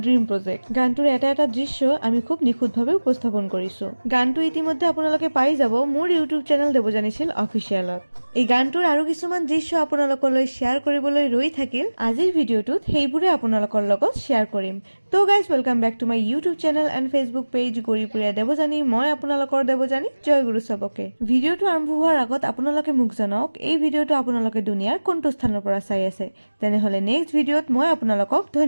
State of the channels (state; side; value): inverted; both; correlation -1.00